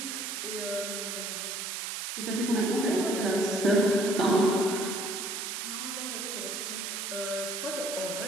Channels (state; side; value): noise; right; hiss, 4 dB below the sound